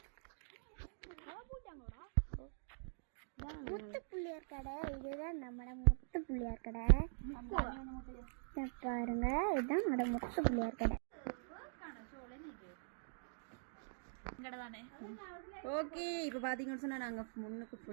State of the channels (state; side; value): silent; left; digital silence